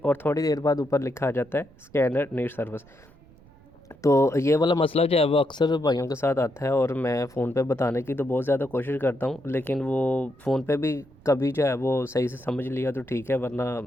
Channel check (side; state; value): right; noise; rumble, 25 dB below the sound